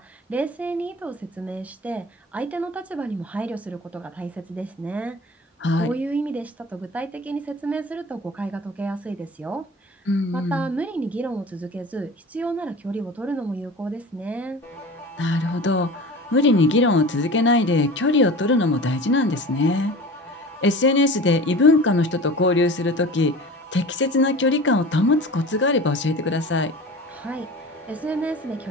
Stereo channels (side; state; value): both; normal; correlation 0.37